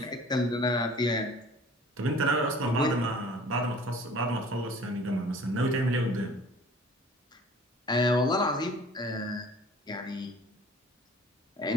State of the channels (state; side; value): normal; both; correlation 0.49